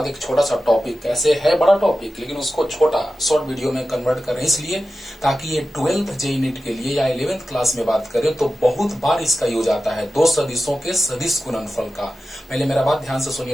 एक छोटा सा टॉपिक, कैसे है बड़ा टॉपिक लेकिन उसको छोटा शॉर्ट वीडियो में कन्वर्ट करें, इसलिए ताकि ये 12th जेईई नीट के लिए या 11th क्लास में बात करें तो बहुत बार इसका यूज आता है, दो सदिशों के सदिश गुणनफल का। पहले मेरा बात ध्यान से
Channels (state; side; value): normal; both; correlation 0.94